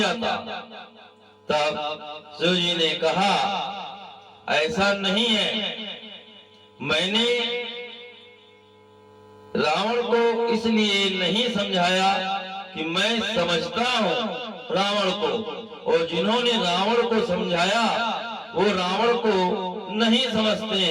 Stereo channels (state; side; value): identical; both; correlation 1.00